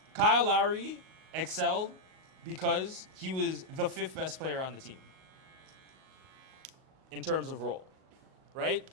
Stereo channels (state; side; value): late; left; 38 ms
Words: Kyle Lowry excelled because he was the 5th best player on the team in terms of role, right?